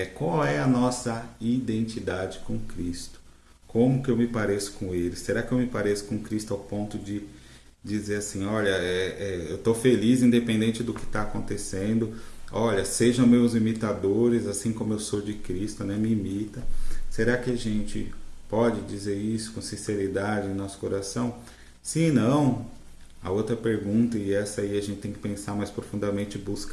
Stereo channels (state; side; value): identical; both; correlation 1.00